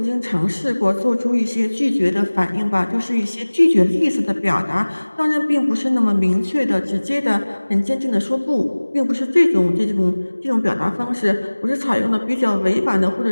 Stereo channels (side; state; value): both; inverted; correlation -1.00